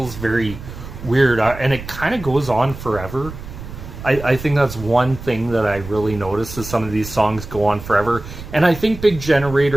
very weird, and it kind of goes on forever. I think that's one thing that I really noticed is some of these songs go on forever, and I think Big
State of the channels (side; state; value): right; noise; rumble, 12 dB below the sound